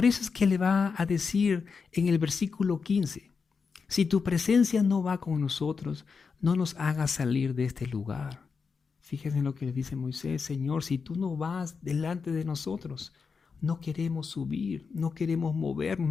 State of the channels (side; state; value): right; quieter; 5.3 dB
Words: eso es que le va a decir en el versículo 15, si tu presencia no va con nosotros, no nos hagas salir de este lugar. Fíjense en lo que le dice Moisés, Señor, si tú no vas delante de nosotros, no queremos subir, no queremos movernos,